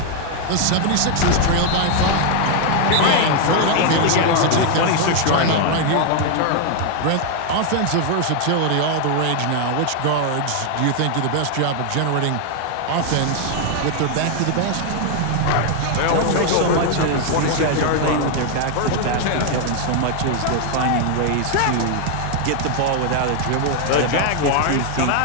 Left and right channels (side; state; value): both; different; correlation 0.00